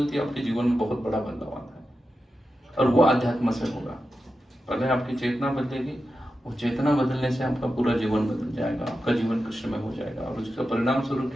है, आपके जीवन में बहुत बड़ा बदलाव आता है। और वो अध्यात्म से होगा। पहले आपकी चेतना बदलेगी, वो चेतना बदलने से आपका पूरा जीवन बदल जाएगा, आपका जीवन कृष्ण में हो जाएगा। और उसका परिणाम स्वरूप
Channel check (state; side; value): normal; both; correlation 0.90